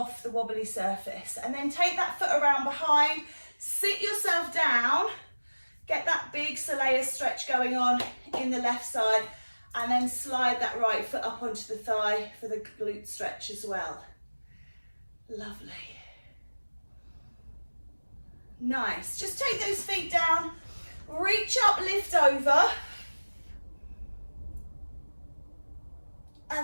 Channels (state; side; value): inverted; both; correlation -1.00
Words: the wobbly surface. And then take that foot around behind, sit yourself down, get that big soleus stretch going on in the left side, and then slide that right foot up onto the thigh for the glute stretch as well. Lovely. Nice. Just take those feet down, Reach up, lift over.